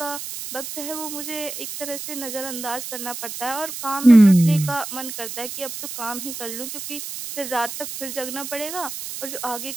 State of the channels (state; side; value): noise; right; hiss, 8 dB below the sound